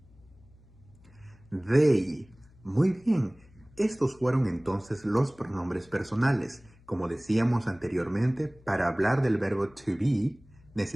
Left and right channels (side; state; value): left; noise; hum, 27 dB below the sound